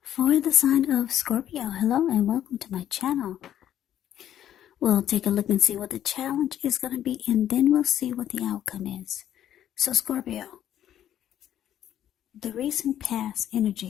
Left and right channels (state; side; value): quieter; right; 11.1 dB